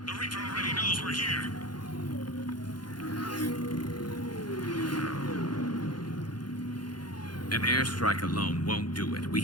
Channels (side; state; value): right; late; 0.71 ms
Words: The Reaper already knows we're here. An airstrike alone won't do it. We